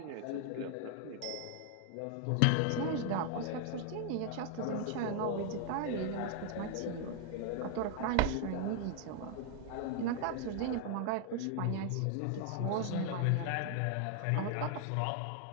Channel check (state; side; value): different; both; correlation 0.00